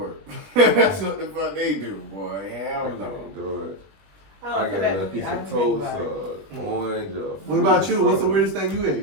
That's what the fuck they do, boy. I Hell can't no. do it. I I don't got that a could be- piece I of can think toast, about it. orange. What about you? What's the fruit. weirdest thing you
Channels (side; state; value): left; late; 20 ms